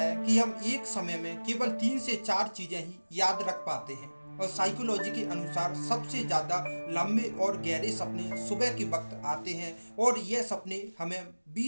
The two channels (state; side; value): inverted; both; correlation -1.00